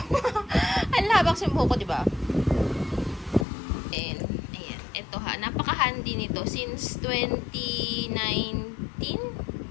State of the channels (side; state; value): right; drops out; at 3.5 s